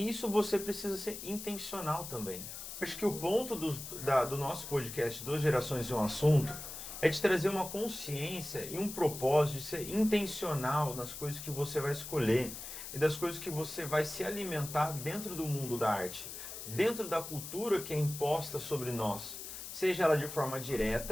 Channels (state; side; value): noise; left; hiss, 9 dB below the sound